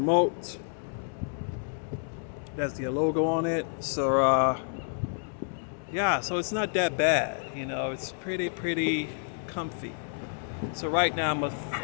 That's the logo on it. So, so it's not that bad. It's pretty comfy. So right now I'm with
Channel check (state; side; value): silent; right; 58 dB below the other